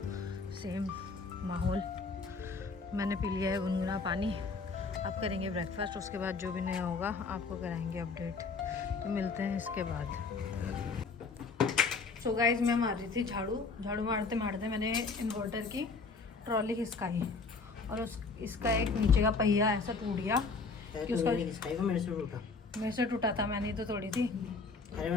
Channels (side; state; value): right; quieter; 4.3 dB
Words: सेम माहौल। मैंने पी लिया है गुनगुना पानी। अब करेंगे ब्रेकफास्ट, उसके बाद जो भी नया होगा आपको कराएंगे अपडेट। तो मिलते हैं इसके बाद। सो गाइज मैं मार रही थी झाड़ू मारते मारते मैंने इन्वर्टर की ट्रॉली खिसकाई और इसका एक नीचे का पहिया ऐसा टूट गया कि उसका मेरे से टूटा था, मैंने तो तोड़ी थी। अरे